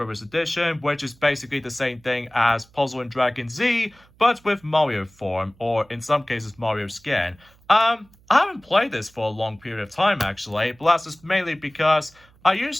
Edition, which is basically the same thing as Puzzle & Dragon Z, but with Mario form, or in some cases Mario skin. I haven't played this for a long period of time actually, but that's just mainly because I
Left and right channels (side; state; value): right; noise; hum, 29 dB below the sound